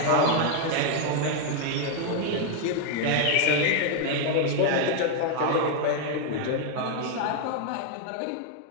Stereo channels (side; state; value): both; different; correlation 0.01